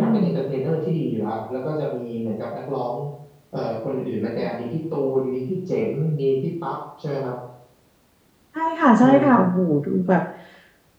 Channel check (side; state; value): both; identical; correlation 1.00